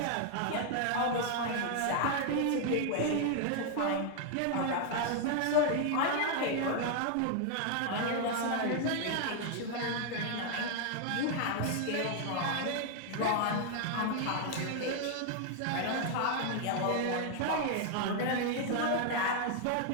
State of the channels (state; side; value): different; both; correlation 0.00